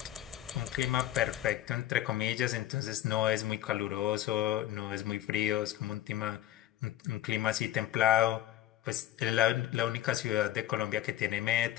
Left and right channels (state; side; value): quieter; right; 13.6 dB